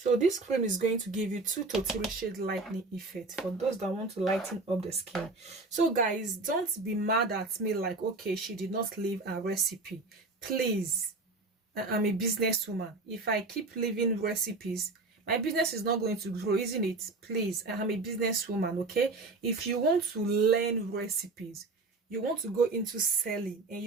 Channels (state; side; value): quieter; left; 3.4 dB